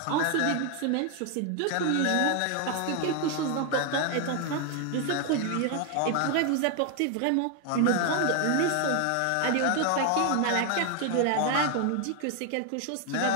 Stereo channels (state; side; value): different; both; correlation 0.00